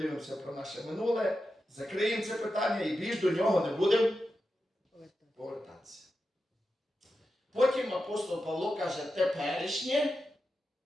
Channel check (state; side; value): normal; both; correlation 0.90